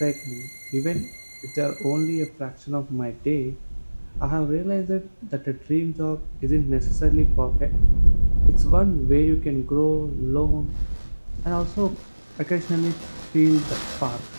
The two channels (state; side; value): inverted; both; correlation -1.00